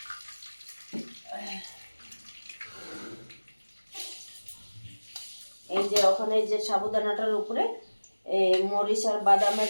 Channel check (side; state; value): both; inverted; correlation -1.00